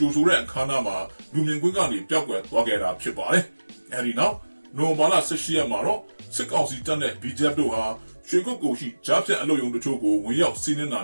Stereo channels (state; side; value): inverted; both; correlation -1.00